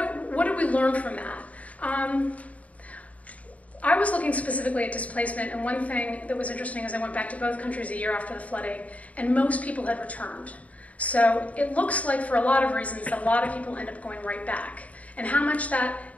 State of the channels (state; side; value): late; right; 0.069 ms